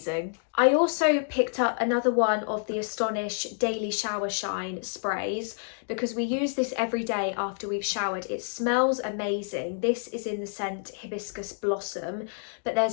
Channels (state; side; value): silent; right; digital silence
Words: I also picked up another one of the Astonish Daily Shower Shine sprays because we use this every day after we've showered. It smells amazing. This is in the scent Hibiscus Blossom, but